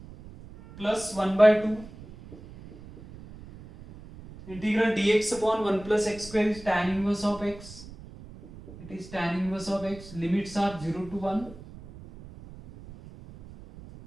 plus 1 by 2 integral dx upon 1 plus x square is tan inverse of x, it is tan inverse of x, limits are 0 to 1.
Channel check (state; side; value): noise; right; rumble, 17 dB below the sound